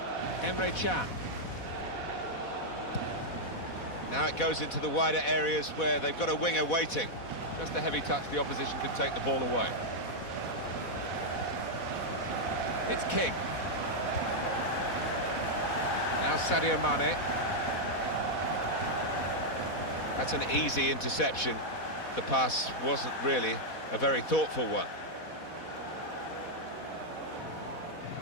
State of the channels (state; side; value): late; right; 4.1 ms